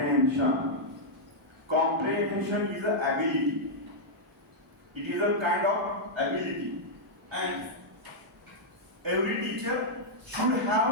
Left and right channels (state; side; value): normal; both; correlation -0.06